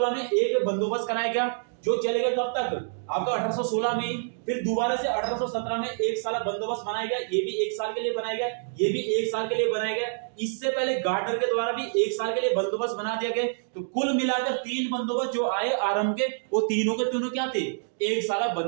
में एक बंदोबस्त कराया गया जो चलेगा कब तक, आपका 1816 में ही। फिर दोबारा से 1817 में एक साल बंदोबस्त बनाया गया, ये भी 1 साल के लिए बनाया गया, ये भी 1 साल के लिए बनाया गया। इससे पहले गार्डनर के द्वारा भी 1 साल के लिए बंदोबस्त बना दिया गया। तो कुल मिलाकर 3 बंदोबस्त जो आए आरंभ के, वो तीनों के तीनों क्या थे, 1 साल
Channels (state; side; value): silent; left; digital silence